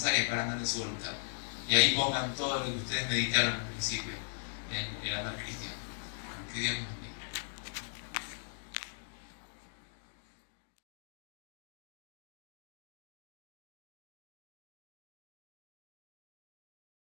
para andar en su voluntad? Y ahí pongan todo lo que ustedes meditaron al principio en el andar cristiano. Que Dios nos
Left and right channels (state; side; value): silent; right; digital silence